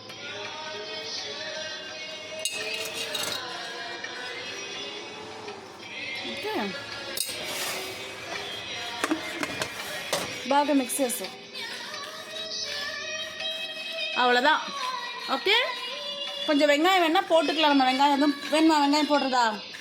ஓகே, బాగా మిక్స్ చేసు. அவ்வளோதான். ஓகே, கொஞ்சம் வெங்காயம் வேணால் போட்டுக்கலாம். நம்ம வெங்காயம் எதுவும் வேணுமா? வெங்காயம் போடுறதா?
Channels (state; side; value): identical; both; correlation 1.00